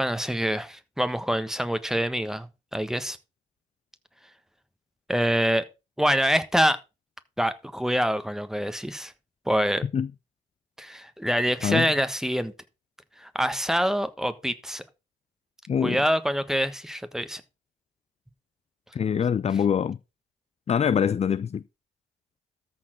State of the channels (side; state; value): both; normal; correlation 0.85